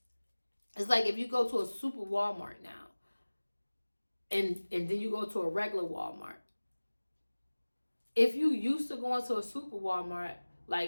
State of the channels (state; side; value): inverted; both; correlation -1.00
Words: It's like if you go to a super Walmart now, and then you go to a regular Walmart. If you used to going to a super Walmart,